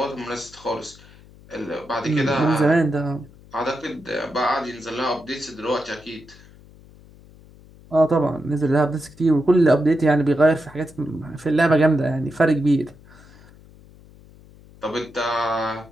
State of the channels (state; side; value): noise; left; hum, 23 dB below the sound